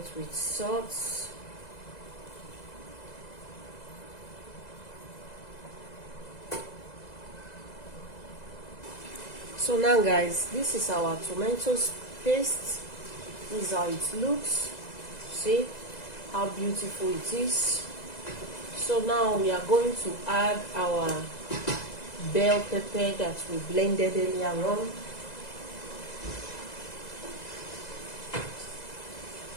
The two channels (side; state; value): right; late; 2.0 ms